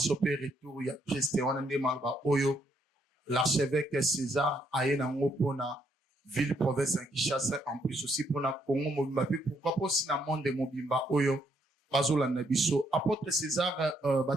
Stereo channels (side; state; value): both; normal; correlation 0.73